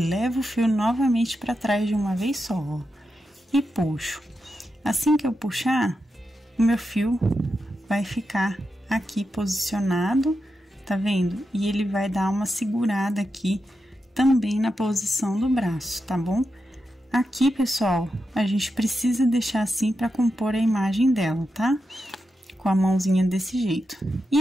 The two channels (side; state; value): both; normal; correlation 0.88